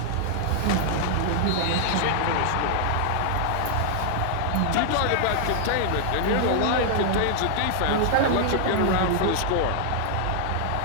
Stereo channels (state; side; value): different; both; correlation -0.01